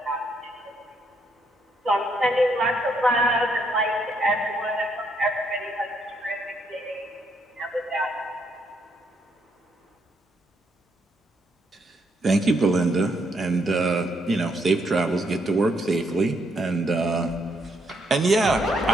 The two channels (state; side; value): normal; both; correlation 0.74